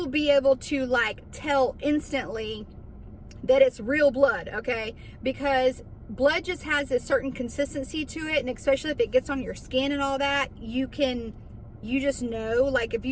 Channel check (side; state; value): both; identical; correlation 1.00